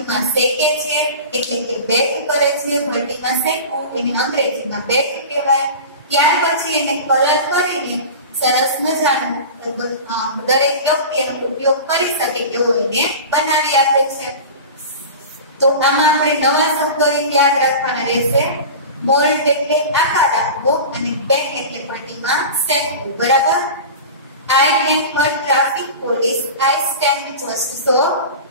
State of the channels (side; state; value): both; inverted; correlation -0.32